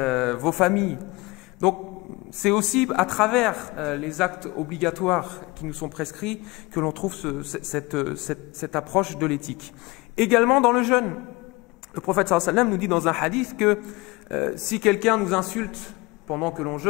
Vos familles. Donc, c'est aussi à travers les actes obligatoires qui nous sont prescrits que l'on trouve cette approche de l'éthique. Également dans le jeûne. Le prophète sallallahu alayhi wa sallam nous dit dans un hadith que si quelqu'un nous insulte pendant que l'on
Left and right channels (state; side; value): quieter; right; 23.7 dB